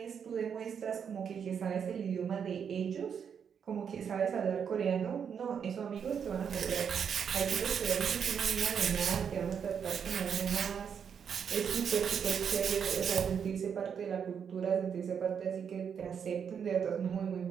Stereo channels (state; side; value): quieter; left; 7.3 dB